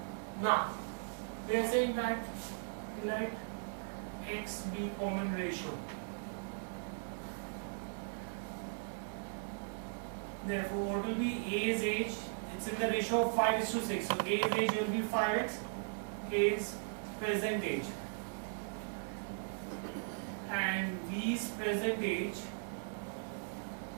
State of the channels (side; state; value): left; silent; 52 dB below the other